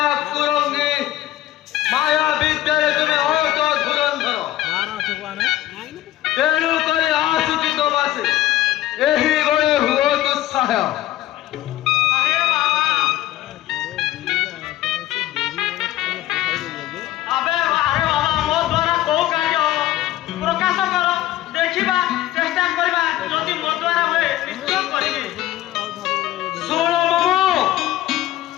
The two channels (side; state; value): right; quieter; 14.7 dB